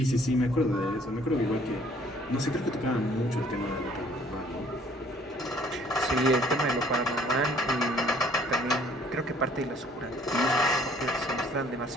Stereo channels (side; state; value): both; normal; correlation 0.58